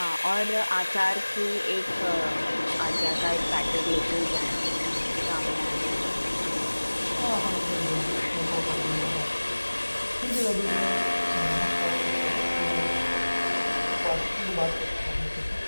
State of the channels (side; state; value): both; inverted; correlation -1.00